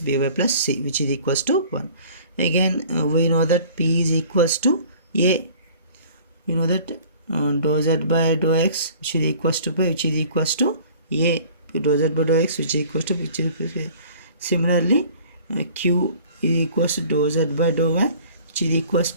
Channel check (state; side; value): inverted; both; correlation -0.50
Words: plus c, which is equals to 1. Again we know that p is equals to a. We know that dou z by dou x, which is equals to pi, which is equals to a. Dou z by dou x, which is equals to a. Similarly q is equals to dou z by dou y, which is equals